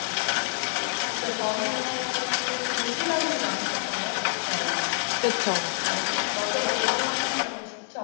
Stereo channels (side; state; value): right; silent; 60 dB below the other